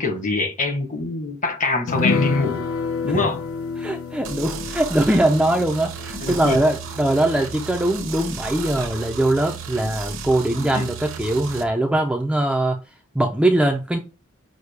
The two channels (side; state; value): both; normal; correlation 0.75